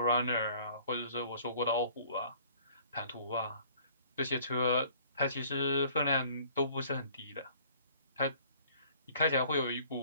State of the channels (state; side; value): inverted; both; correlation -0.54